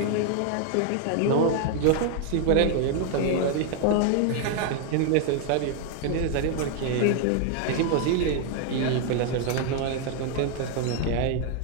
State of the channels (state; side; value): different; both; correlation 0.00